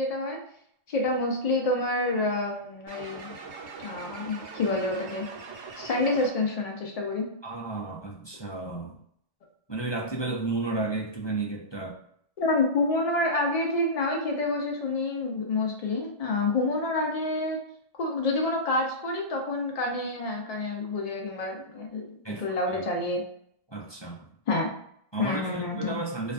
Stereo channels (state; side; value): late; right; 1.2 ms